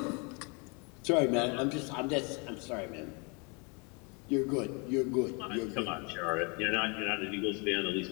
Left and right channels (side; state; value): right; quieter; 32.8 dB